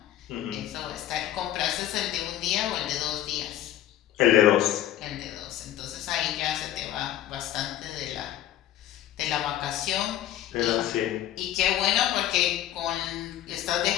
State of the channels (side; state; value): right; quieter; 12.3 dB